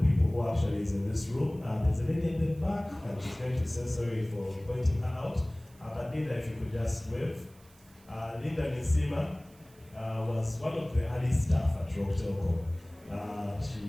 who actually is in this room, there's a lady in the back, and she's going to say sorry for pointing her out. But Linda, if you could just wave. Linda Nisima was one of the early staff at Roke Telkom. She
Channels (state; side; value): noise; right; hiss, 28 dB below the sound